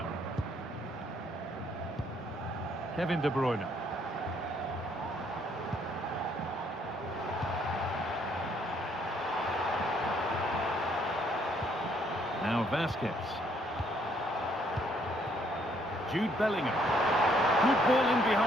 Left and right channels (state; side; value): normal; both; correlation 0.67